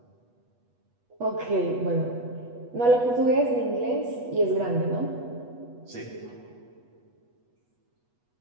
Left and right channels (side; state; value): left; late; 8.2 ms